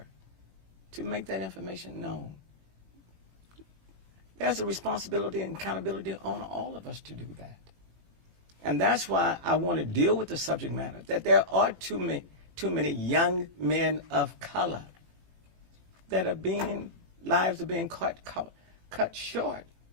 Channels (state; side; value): late; left; 18 ms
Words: to make that information known. There's a responsibility and accountability on all of us to do that. And that's why I want to deal with the subject matter, that there are too many young men of color that lives are being cut short